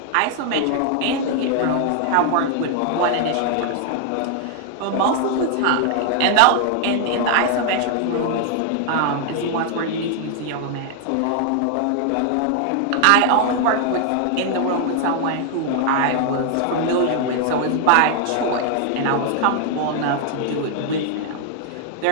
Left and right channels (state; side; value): different; both; correlation 0.00